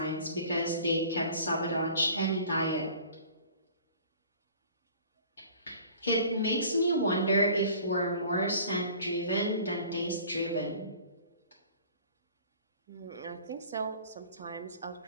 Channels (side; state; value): both; inverted; correlation -0.47